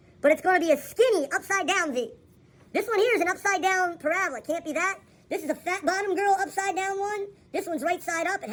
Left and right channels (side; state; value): both; identical; correlation 1.00